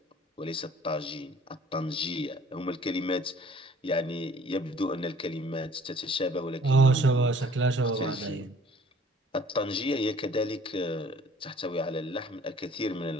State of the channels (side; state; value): both; normal; correlation 0.54